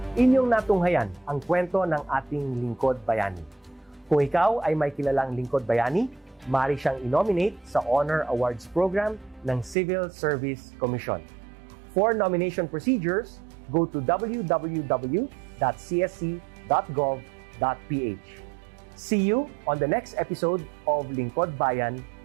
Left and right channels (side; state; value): left; drops out; at 9.8 s